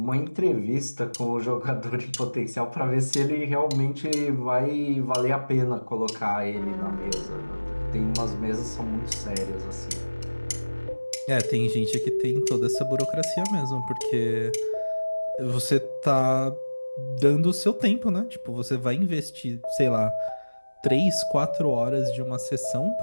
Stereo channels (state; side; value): inverted; both; correlation -1.00